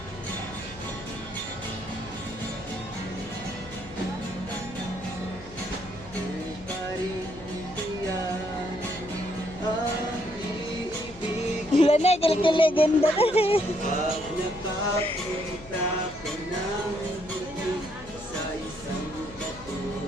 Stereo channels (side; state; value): left; noise; hum, 18 dB below the sound